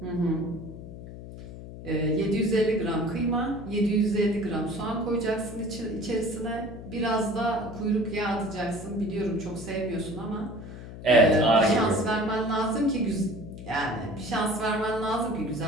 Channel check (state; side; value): noise; left; hum, 12 dB below the sound